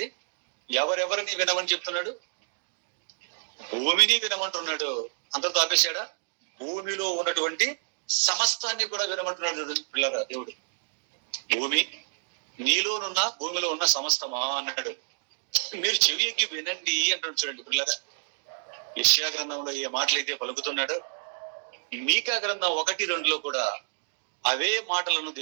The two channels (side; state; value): left; silent; digital silence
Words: ఎవరెవరిని వినమని చెప్తున్నాడు? భూమిని వినమంటున్నాడు. అంతటితో ఆపేశాడా? భూమిలో ఉన్నటువంటి సమస్తాన్ని కూడా వినమంటున్నాడు పిల్లరా దేవుడు. భూమి నీలోనున్న, భూమిలో ఉన్న సమస్తమా అన్నాడు. మీరు చెవి ఎక్కి వినండి అంటాడు. చూడండి పిల్లరా, యెషయా గ్రంథంలో ఏ మాటలైతే పలుకుతున్నాడో మీకా గ్రంథం 1-2లో కూడా అవే మాటలను